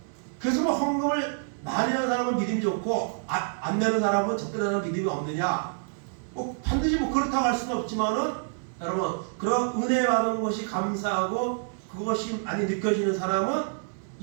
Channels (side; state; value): left; silent; digital silence